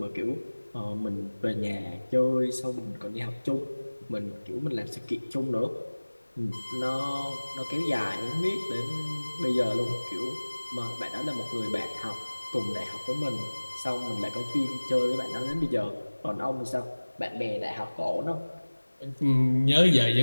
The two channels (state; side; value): inverted; both; correlation -1.00